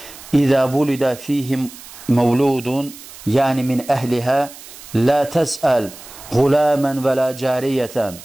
İzə vulidə fihim məvludun, yəni min əhlihə, lə təsəl غuləmən və lə cəriyətən,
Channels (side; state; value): right; noise; hiss, 17 dB below the sound